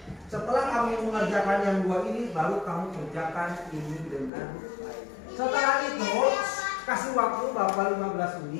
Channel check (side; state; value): right; drops out; at 4.3 s